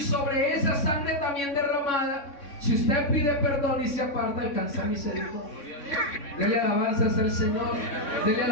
sobre esa sangre también derramada, si usted pide perdón y se aparta, alcanza misericordia. Dele alabanzas al Señor, dele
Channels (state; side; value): late; right; 3.6 ms